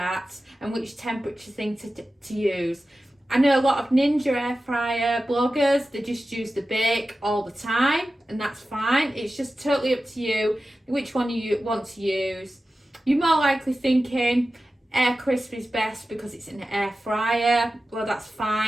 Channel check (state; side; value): normal; both; correlation 0.94